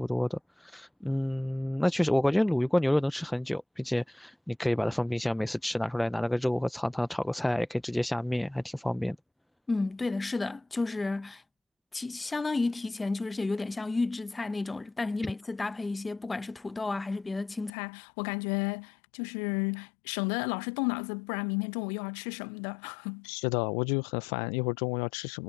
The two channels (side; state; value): right; drops out; at 17.7 s